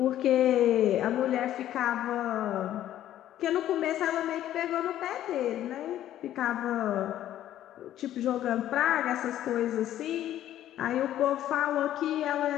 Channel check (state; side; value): quieter; right; 12.3 dB